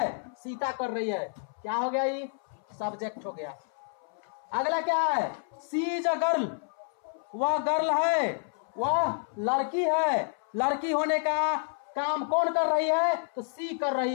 सीता कर रही है। क्या हो गया, ये सब्जेक्ट हो गया। अगला क्या है, सी इज अ गर्ल, वह गर्ल है, वह लड़की है। लड़की होने का काम कौन कर रही है, तो सी कर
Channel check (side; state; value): right; silent; 58 dB below the other